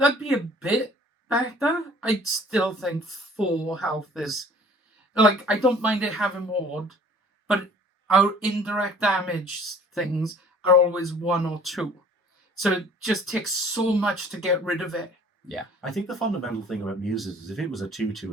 be a bit better. I'd still think 4 health is... Like, I don't mind it having Ward, but our indirect damage things are always 1 or 2. So it just takes so much to get rid of it. Yeah. I think the fundamental thing about Muses is if it was a 2/2,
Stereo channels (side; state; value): both; normal; correlation 0.52